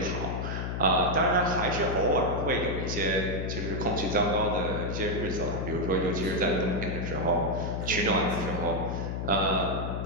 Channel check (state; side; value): noise; left; hum, 3 dB below the sound